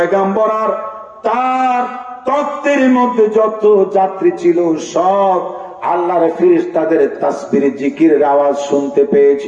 আর তার তত্ত্বের মধ্যে যত যাত্রী ছিল সব আল্লাহর ফেরেশতাদের তাসবিহ জিকিরের আওয়াজ শুনতে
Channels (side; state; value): both; identical; correlation 1.00